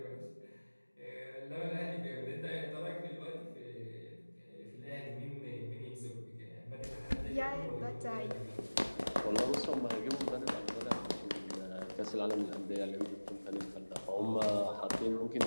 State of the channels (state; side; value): inverted; both; correlation -1.00